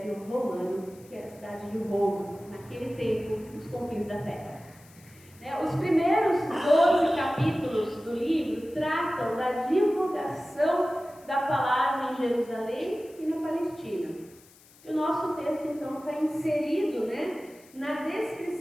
Romano, que era a cidade de Roma, naquele tempo, nos confins da terra. Os primeiros 12 capítulos do livro tratam da divulgação da palavra em Jerusalém e na Palestina. E o nosso texto, então, está inserido, na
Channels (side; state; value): left; noise; hiss, 26 dB below the sound